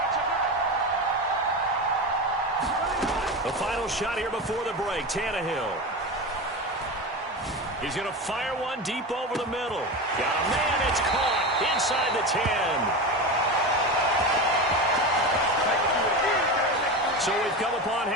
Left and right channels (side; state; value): both; normal; correlation 0.23